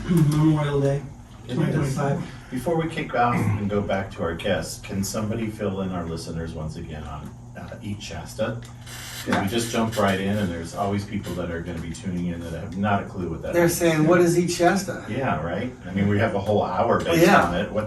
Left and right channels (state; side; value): identical; both; correlation 1.00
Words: Memorial Day, It is. 2025. Before we kick off and go back to our guests, can somebody fill in our listeners once again on Eat Shasta? 'Cause we just jumped right in, and there's always people that are gonna be tuning in that have not a clue what that is. They're saying, what is Eat Shasta? Yeah, right? I mean, we have a whole hour based Yeah. on it.